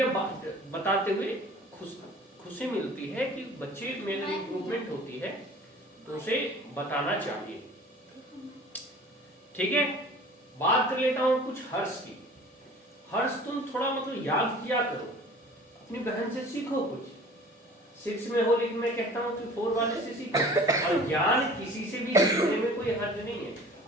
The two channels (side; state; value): both; normal; correlation 0.45